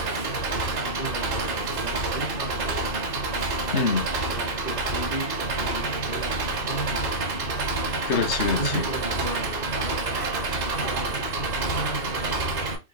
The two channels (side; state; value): right; late; 2.6 ms